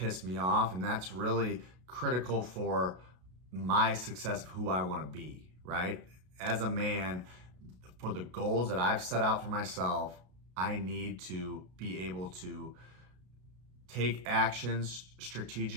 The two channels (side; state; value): left; late; 33 ms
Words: me off. And that's really critical for my success of who I want to be, right? As a man, for the goals that I've set out for myself, I need to be able to take actions